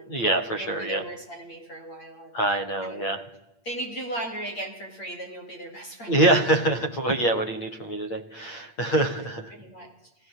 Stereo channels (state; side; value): late; right; 8.6 ms